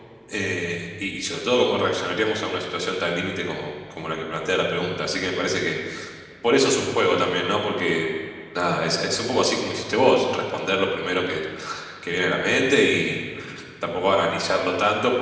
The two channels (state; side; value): identical; both; correlation 1.00